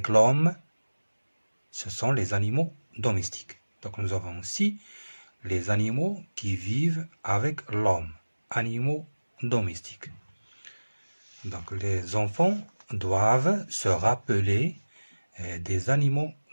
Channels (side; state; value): both; inverted; correlation -1.00